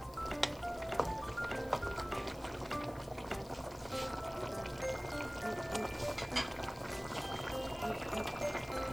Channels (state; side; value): noise; left; hiss, 21 dB below the sound